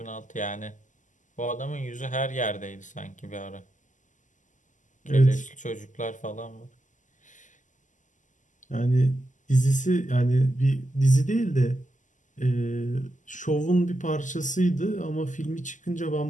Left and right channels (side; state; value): right; late; 0.37 ms